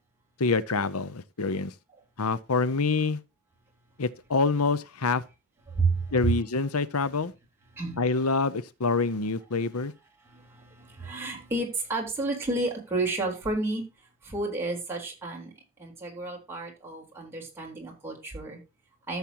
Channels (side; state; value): both; normal; correlation 0.13